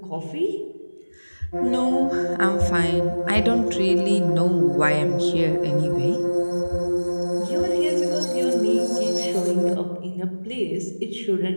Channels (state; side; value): inverted; both; correlation -1.00